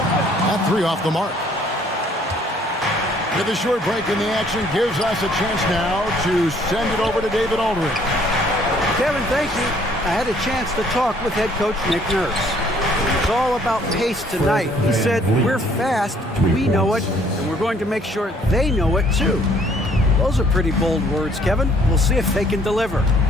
That 3 off the mark. With a short break in the action gives us a chance now to send it over to David Aldridge. Kevin, thank you. I had a chance to talk with head coach Nick Nurse. It's all about pace tonight. He said, we're fast, we know it, and we're going to make sure they know it too. Those are pretty bold words, Kevin. We'll see if they can deliver.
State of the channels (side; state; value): both; normal; correlation 0.61